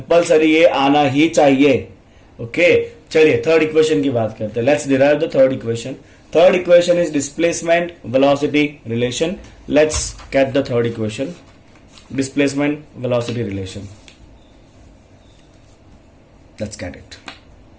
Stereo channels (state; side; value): identical; both; correlation 1.00